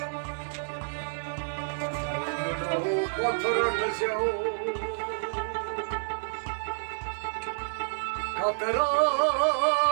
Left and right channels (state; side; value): silent; left; digital silence